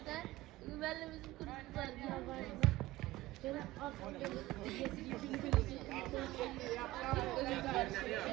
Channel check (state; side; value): quieter; left; 17.6 dB